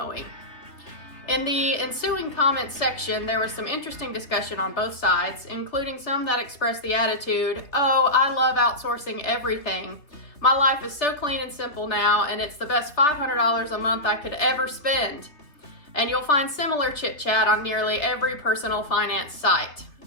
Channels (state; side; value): late; right; 3.2 ms